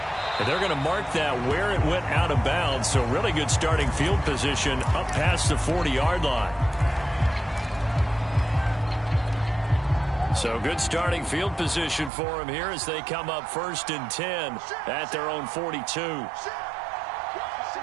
And they're going to mark that where it went out of bounds. So really good starting field position up past the 40-yard line. So good starting field position for him here as they come up 1st and 10 at their own 42.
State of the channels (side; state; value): left; drops out; at 12.1 s